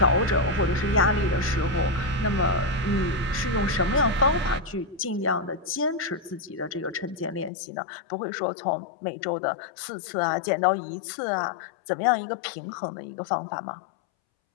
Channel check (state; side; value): drops out; right; at 7.5 s